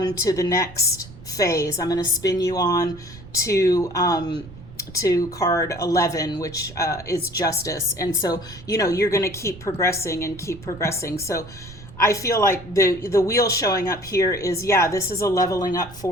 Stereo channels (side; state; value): right; noise; rumble, 17 dB below the sound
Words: to the next phase. I'm going to spin you on to card 11, which is justice. And so you're going to keep progressing and keep progressing. So I feel like the wheel showing up here is, yeah, this is a leveling up